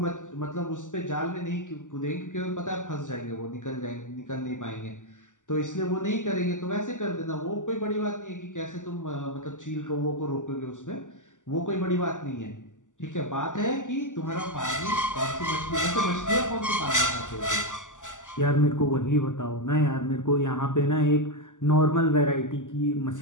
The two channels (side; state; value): right; late; 0.87 ms